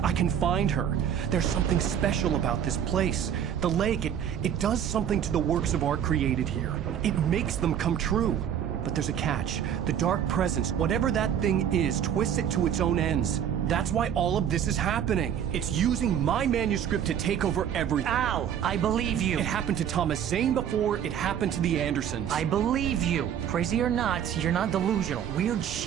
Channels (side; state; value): left; quieter; 9.2 dB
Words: I can find her. There's something special about this place. The lake, it does something to the works of art created here. It makes them come true. But there's a catch. The dark presence, whatever that thing is, twists it to its own ends. That's why all of this is happening. It's using my manuscript to take over everything. Al, I believe you. It happened to Thomas Zane before, it happened to the Andersons. I believe you. Crazy or not, you're not delusional. Weird